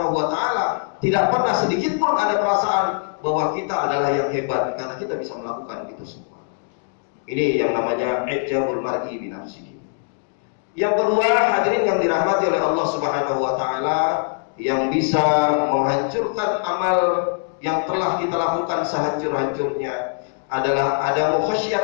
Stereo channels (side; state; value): right; silent; digital silence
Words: wa taala. Tidak pernah sedikit pun ada perasaan bahwa kita adalah yang hebat karena kita bisa melakukan itu semua. Ini yang namanya ijabul mar'i bi nafsihi. Yang kedua, hadirin yang dirahmati oleh Allah Subhanahu wa taala, yang bisa menghancurkan amal yang telah kita lakukan sehancur-hancurnya adalah adamu